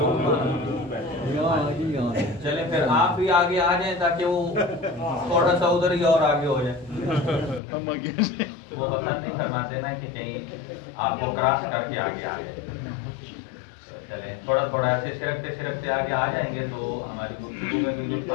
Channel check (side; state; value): right; drops out; at 7.6 s